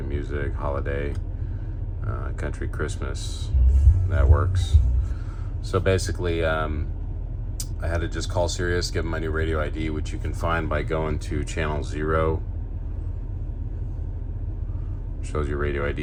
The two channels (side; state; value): both; identical; correlation 1.00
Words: music, holiday, country, Christmas. That works. So basically, I had to just call Sirius, give them my new radio ID, which you can find by going to channel 0. Shows your radio